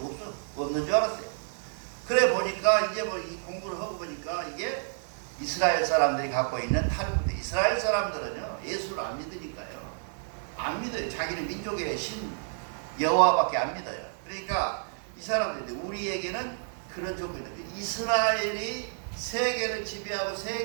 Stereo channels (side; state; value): left; silent; 58 dB below the other